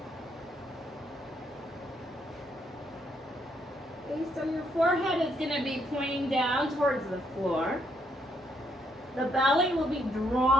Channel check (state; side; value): normal; both; correlation 0.74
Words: Okay, so your forehead is going to be pointing down towards the floor. The belly will be